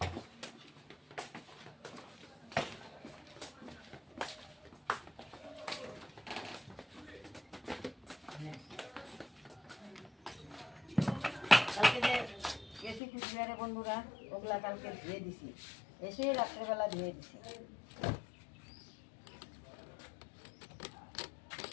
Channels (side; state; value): right; drops out; at 13.0 s